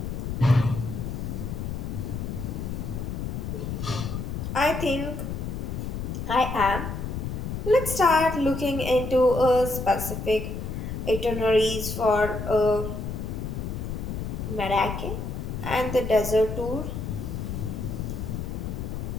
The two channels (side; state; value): left; noise; rumble, 4 dB below the sound